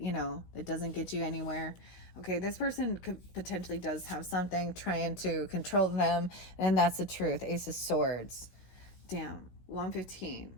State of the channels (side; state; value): right; late; 16 ms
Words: it doesn't get you anywhere. Okay, this person potentially does have something trying to control them, and that's the truth. Ace of Swords. Damn.